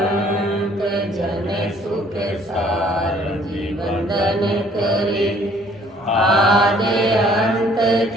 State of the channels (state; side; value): normal; both; correlation 0.59